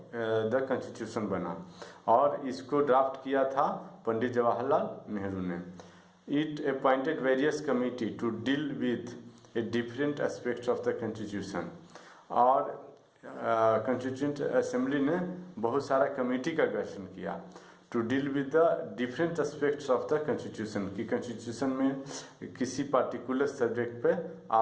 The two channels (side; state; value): both; identical; correlation 1.00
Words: द कॉन्स्टिट्यूशन बना और इसको ड्राफ्ट किया था पंडित जवाहरलाल नेहरू ने। It appointed various committee to deal with a different aspects of the constitution और कॉन्स्टिट्यूंट असेंबली ने बहुत सारा कमेटी का गठन किया to deal with the different aspects of the constitution कि कॉन्स्टिट्यूशन में किसी पार्टिकुलर सब्जेक्ट पे